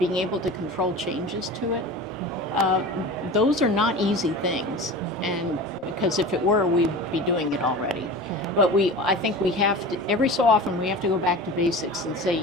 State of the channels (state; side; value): normal; both; correlation 0.34